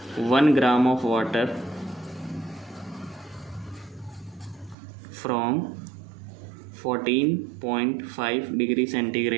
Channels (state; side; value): drops out; left; at 4.8 s